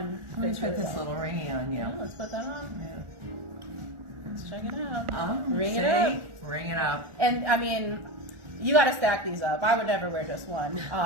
Let's fits put really this well. little ringy on you. Yeah, let's put that on. Yeah. Let's check it out. Ring it up. Ring it up. And you got to stack these up. I would never wear just one.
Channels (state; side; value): late; left; 1.4 ms